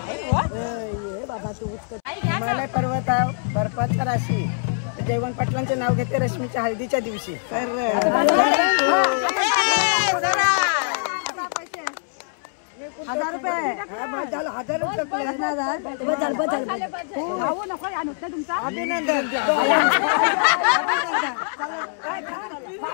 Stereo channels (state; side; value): silent; right; 63 dB below the other